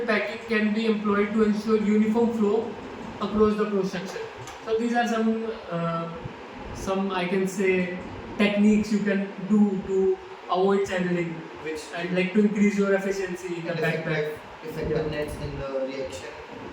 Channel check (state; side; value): identical; both; correlation 1.00